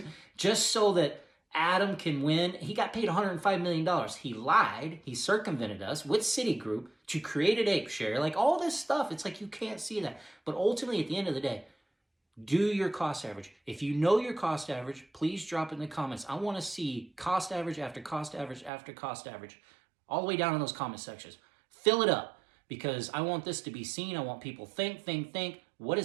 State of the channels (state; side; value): drops out; left; at 18.7 s